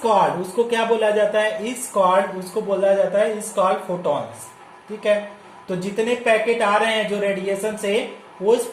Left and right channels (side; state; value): both; identical; correlation 1.00